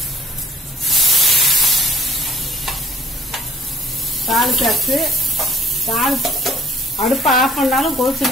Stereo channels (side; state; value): both; normal; correlation 0.55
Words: தாளிச்சாச்சு. அடுப்பை ஆஃப் பண்ணாலும்